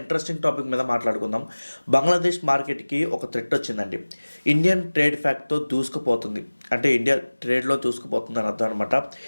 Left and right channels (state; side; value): inverted; both; correlation -1.00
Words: టాపిక్ మీద మాట్లాడుకుందాం. బంగ్లాదేశ్ మార్కెట్కి ఒక థ్రెట్ వచ్చిందండి. ఇండియన్ ట్రేడ్ ఫ్యాక్ట్తో దూసుకుపోతుంది, అంటే ఇండియా ట్రేడ్లో దూసుకుపోతుంది అని అర్థం అనమాట.